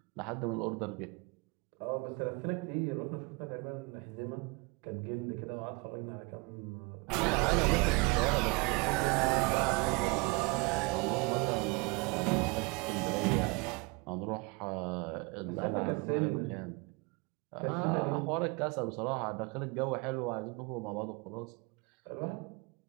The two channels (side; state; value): left; quieter; 27.6 dB